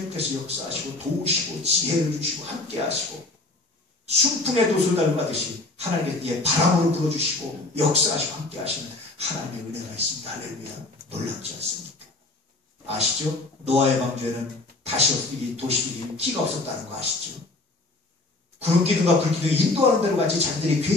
역사하시고 도우시고 지혜를 주시고 함께 하시고 순풍의 도수를 달고가듯이 하나님께 바람으로 불어주시고 역사하시고 함께 하시는 하나님의 은혜가 있습니다. 할렐루야. 놀랍지 않습니까? 아시죠? 노아의 방주에는 다시 도시들이 기가 없었다는 거 아시죠? 구름기둥과 불기둥이 인도하는 대로 가지 자기들이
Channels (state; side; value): quieter; right; 3.0 dB